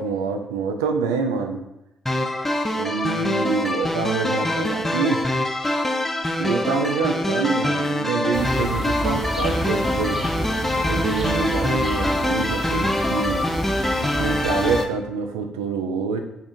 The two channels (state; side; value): normal; both; correlation 0.70